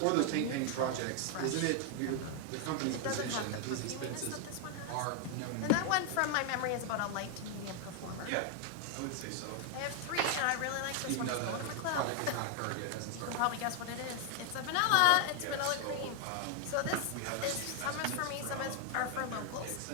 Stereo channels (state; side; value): different; both; correlation 0.00